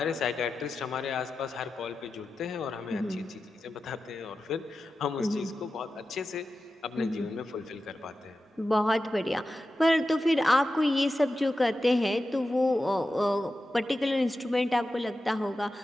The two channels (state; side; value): normal; both; correlation 0.92